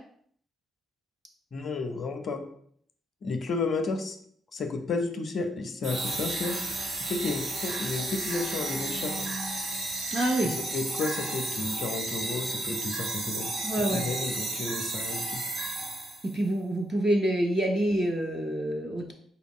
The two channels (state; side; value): normal; both; correlation 0.76